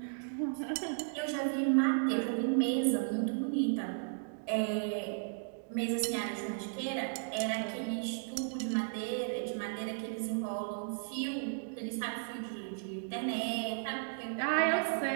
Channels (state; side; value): silent; left; digital silence